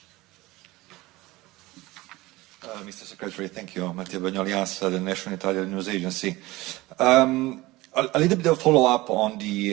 Mr. Secretary, thank you. Matteo Bagnoli, ANSA, the National Italian News Agency. A little bit of follow-up on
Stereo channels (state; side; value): quieter; left; 19.8 dB